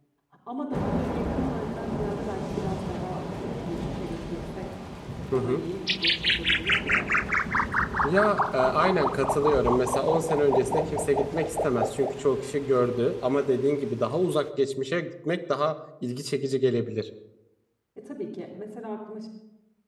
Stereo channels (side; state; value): both; identical; correlation 1.00